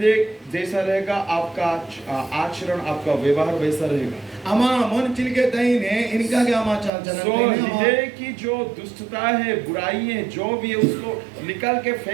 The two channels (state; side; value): drops out; left; at 6.9 s